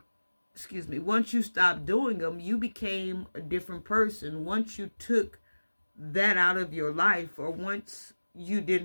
once you stopped doing them, you became a different person. Once you took that out of your life, or once you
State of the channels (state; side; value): inverted; both; correlation -1.00